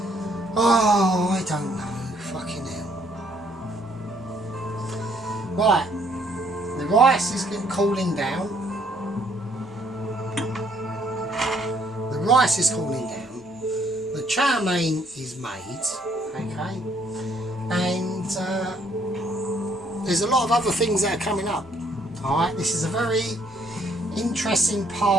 Oh, I don't know. Fucking hell. Right, the rice is getting cooling down. The rice is cooling down. The chow mein is made, okay, and there's a lot of other things that are coming up. Alright, this is a very interesting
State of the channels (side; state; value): both; normal; correlation 0.66